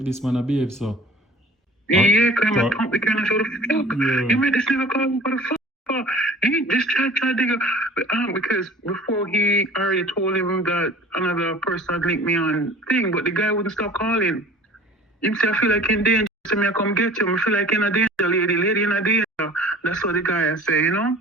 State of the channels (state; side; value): normal; both; correlation 0.46